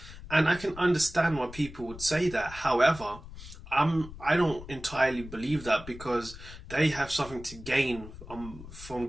And I can understand why people would say that. However, I don't entirely believe that, because they have something to gain from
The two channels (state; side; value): noise; left; rumble, 15 dB below the sound